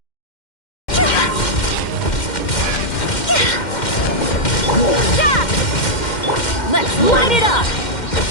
Let's light it up!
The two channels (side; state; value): right; late; 2.1 ms